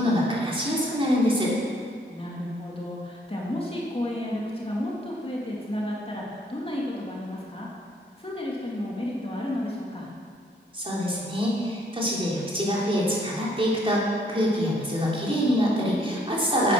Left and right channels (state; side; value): normal; both; correlation 0.65